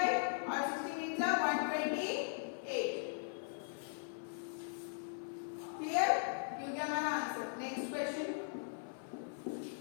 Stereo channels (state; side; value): silent; right; 51 dB below the other